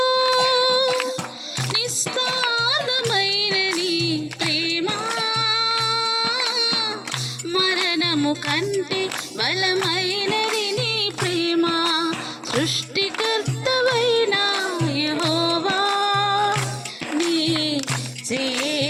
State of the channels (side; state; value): both; identical; correlation 1.00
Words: నిస్తారమైన నీ ప్రేమ మరణము కంటే బలమైనది నీ ప్రేమ. సృష్టికర్తవైన యెహోవా, నీ